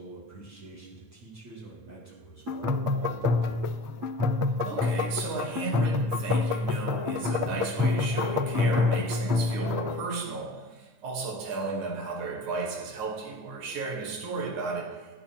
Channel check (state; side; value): late; left; 9.5 ms